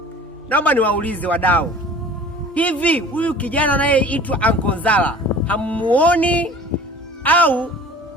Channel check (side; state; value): both; normal; correlation 0.44